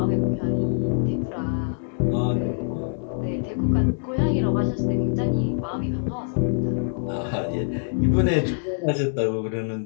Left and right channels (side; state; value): right; silent; digital silence